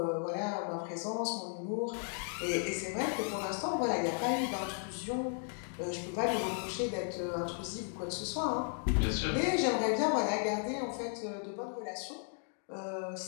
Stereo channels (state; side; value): silent; right; 54 dB below the other